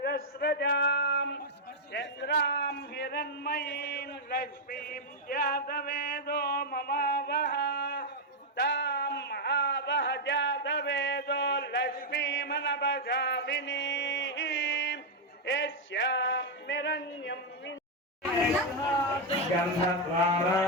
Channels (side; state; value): both; normal; correlation 0.00